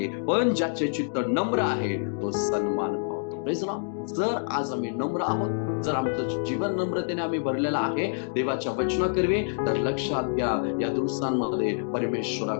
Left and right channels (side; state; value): right; silent; digital silence